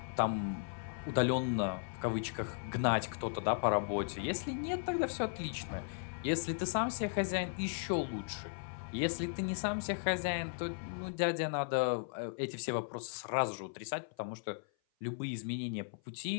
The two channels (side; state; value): right; silent; 53 dB below the other